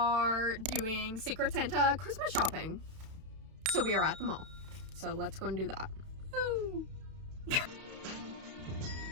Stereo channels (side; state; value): left; late; 32 ms